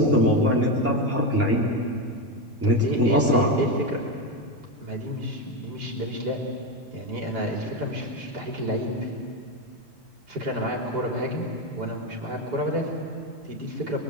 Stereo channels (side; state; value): both; normal; correlation 0.12